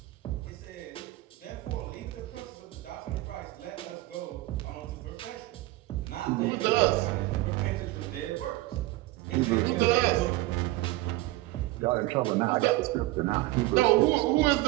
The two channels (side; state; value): left; quieter; 18.6 dB